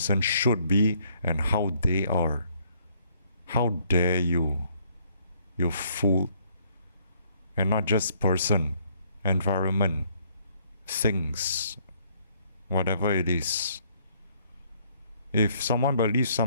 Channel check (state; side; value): inverted; both; correlation -0.66